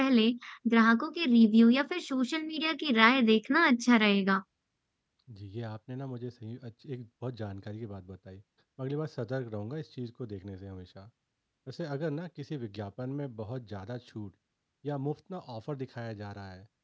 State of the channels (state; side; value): identical; both; correlation 1.00